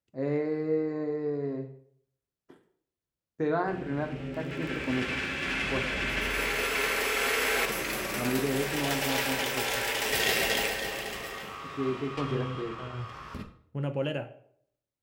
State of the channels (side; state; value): both; identical; correlation 1.00